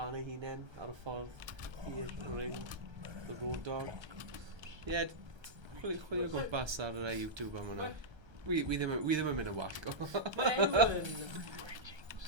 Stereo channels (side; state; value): left; late; 1.3 ms